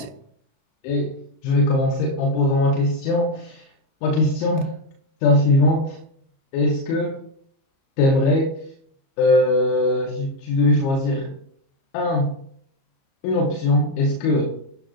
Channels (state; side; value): late; right; 37 ms